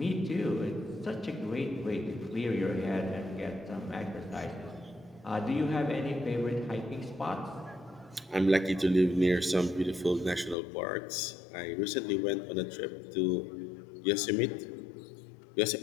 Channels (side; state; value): right; drops out; at 10.6 s